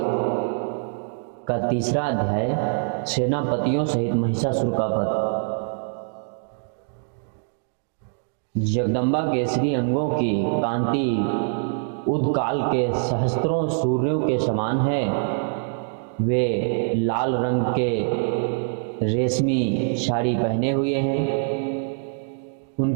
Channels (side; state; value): left; silent; digital silence